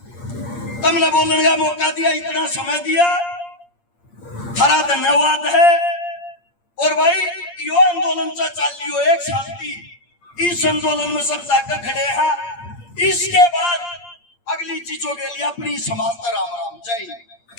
तुमने बोलने का मौका दिया, इतना समय दिया, थारा धन्यवाद है। और भाई यो आंदोलन से चल लियो 1 साल की, इस आंदोलन में सब जाकर खड़े हैं। इसके बाद अगली चीजों के लिए अपनी समाज राम राम। जय हिंद।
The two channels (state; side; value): late; right; 8.6 ms